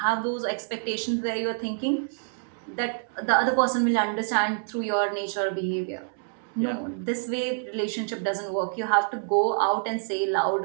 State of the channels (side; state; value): left; silent; digital silence